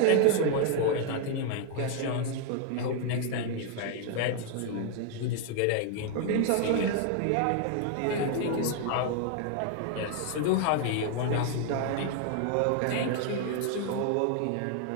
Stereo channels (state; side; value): different; both; correlation 0.00